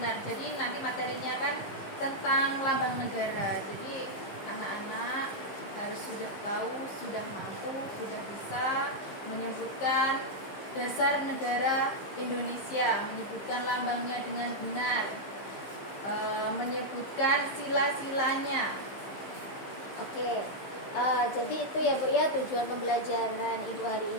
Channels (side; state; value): right; late; 15 ms